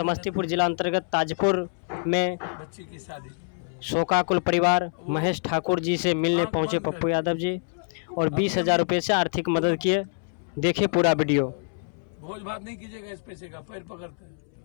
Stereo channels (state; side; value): silent; right; 61 dB below the other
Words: जिला अंतर्गत ताजपुर में बच्ची की शादी, शोकाकुल परिवार महेश ठाकुर जी से मिलने पहुंचे पप्पू यादव जी और 20,000 रुपये से आर्थिक मदद किए। देखिए पूरा वीडियो। भोज भात नहीं कीजिएगा, इस पैसे का पैर पकड़ते